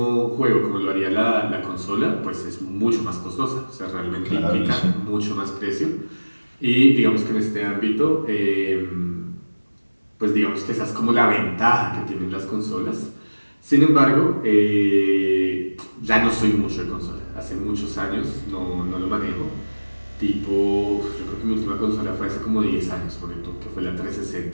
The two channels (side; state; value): both; inverted; correlation -1.00